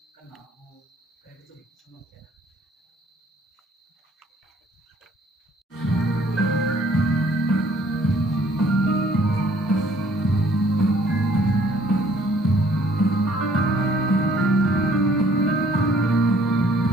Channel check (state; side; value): normal; both; correlation 0.60